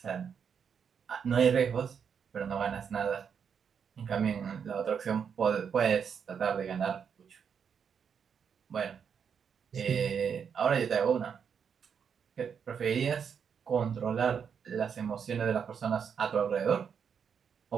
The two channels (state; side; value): quieter; left; 7.1 dB